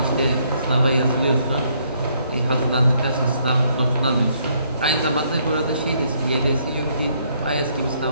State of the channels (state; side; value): inverted; both; correlation -0.69